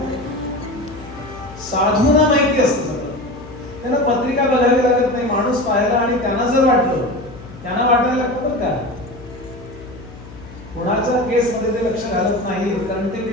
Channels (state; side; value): noise; left; hum, 17 dB below the sound